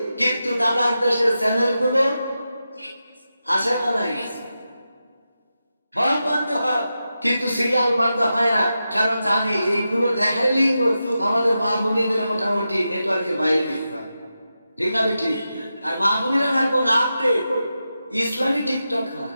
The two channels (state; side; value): inverted; both; correlation -0.90